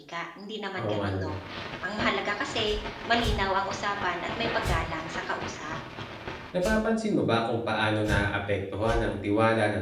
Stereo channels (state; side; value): identical; both; correlation 1.00